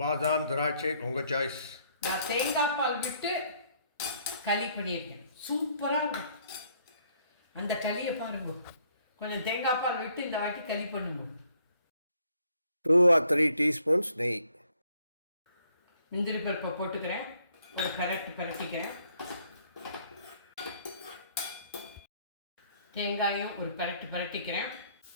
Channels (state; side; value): inverted; both; correlation -0.66